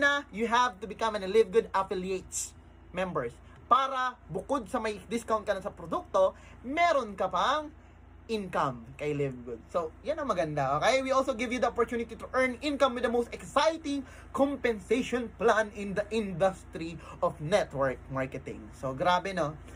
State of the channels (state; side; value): identical; both; correlation 1.00